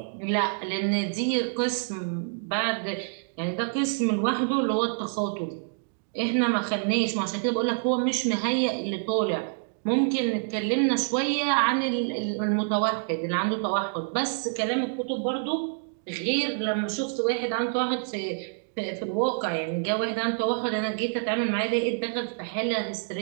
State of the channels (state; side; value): silent; left; digital silence